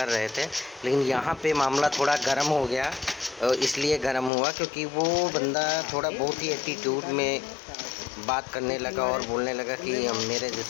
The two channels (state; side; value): drops out; right; at 4.3 s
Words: रहे थे। लेकिन यहाँ पे मामला थोड़ा गर्म हो गया, इसलिए गर्म हुआ क्योंकि वो बंदा थोड़ा बहुत ही एटीट्यूड में बात करने लगा और बोलने लगा कि मेरे